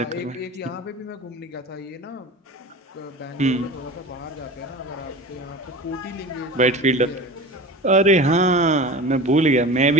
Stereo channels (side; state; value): both; normal; correlation 0.34